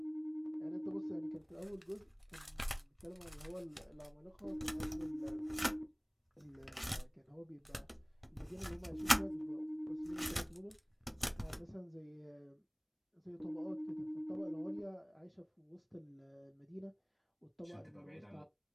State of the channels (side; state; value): both; identical; correlation 1.00